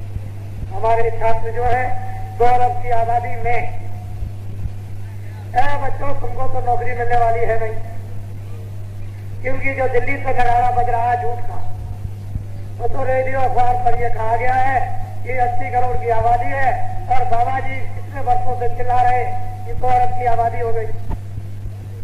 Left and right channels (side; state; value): both; identical; correlation 1.00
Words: हमारे छात्र जो है 2 अरब की आबादी में, बच्चों तुमको तो नौकरी मिलने वाली है नहीं, क्योंकि जो दिल्ली से नगाड़ा बज रहा है झूठ का, वो तो रेडियो अखबार पर यह कहा गया है कि 80 करोड़ की आबादी है, और बाबा जी कितने वर्षों से चिल्ला रहे कि 2 अरब की आबादी हो गई।